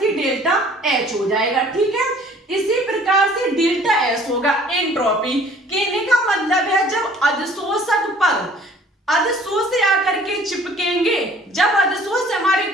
डेल्टा एच हो जाएगा, ठीक है। इसी प्रकार से डेल्टा एस होगा एंट्रोपी। कहने का मतलब है जब अधिशोषक पर अधिशोष से आकर के चिपकेंगे, जब अधिशोष से हमारी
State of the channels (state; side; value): normal; both; correlation 0.54